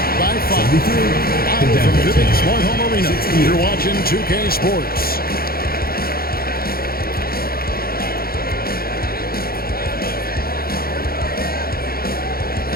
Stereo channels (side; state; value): right; late; 0.44 ms